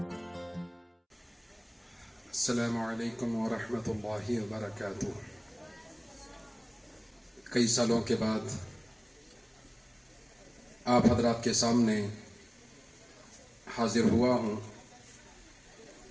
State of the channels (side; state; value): both; identical; correlation 1.00